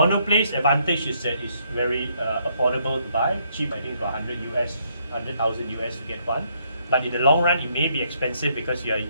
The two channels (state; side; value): inverted; both; correlation -0.71